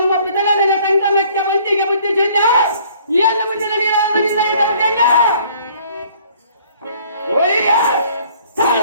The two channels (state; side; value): inverted; both; correlation -0.57